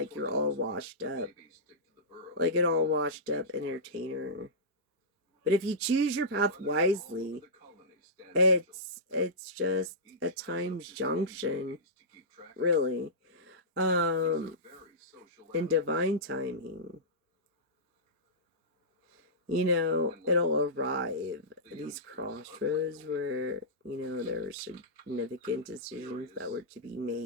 you're all washed up. maybe stick to the burrow. Like an all washed up entertainer. But if you choose your path wisely, The colony stands it's just a each time's develops its own junction, duties to keep track of. really. He's a very social In animal. divine timing. You know, it'll arrive at these crossroads where, you know, there were significant decisions that were to be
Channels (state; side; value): normal; both; correlation -0.16